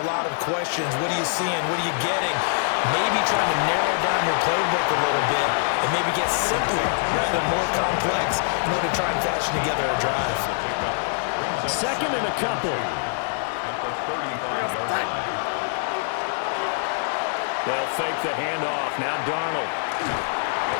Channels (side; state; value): right; silent; 57 dB below the other